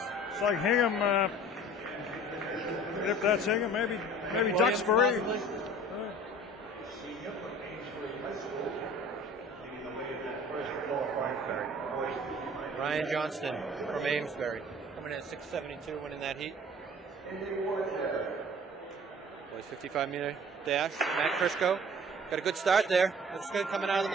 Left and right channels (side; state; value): both; normal; correlation 0.46